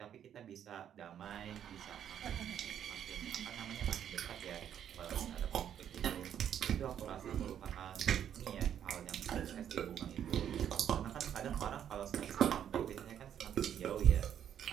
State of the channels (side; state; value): left; quieter; 9.5 dB